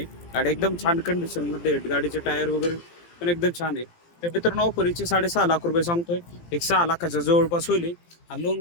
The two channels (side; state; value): right; late; 17 ms